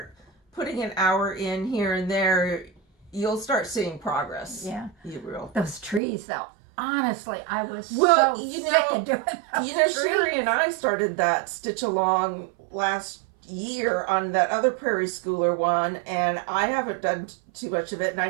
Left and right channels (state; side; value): drops out; left; at 6.0 s